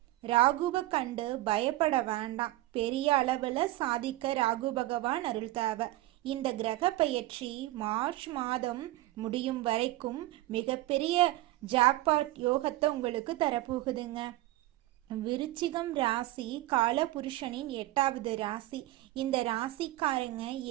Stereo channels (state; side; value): quieter; left; 17.0 dB